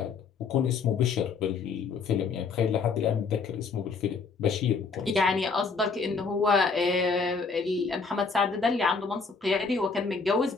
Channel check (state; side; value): quieter; right; 4.8 dB